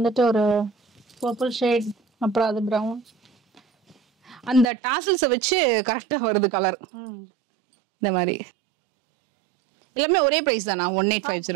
ஒரு பர்பிள் ஷேட், அப்புறம் அது பிரவுன். அந்த டாசல்ஸை வச்சு கரெக்டா வருது கலர். இந்த மாதிரி எல்லாமே ஒரே பிரைஸ் தானா?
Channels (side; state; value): left; drops out; at 4.7 s